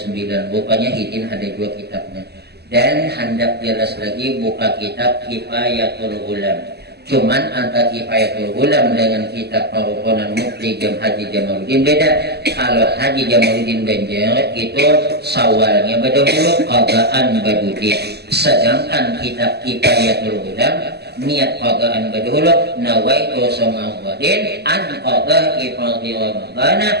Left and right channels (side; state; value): left; late; 0.47 ms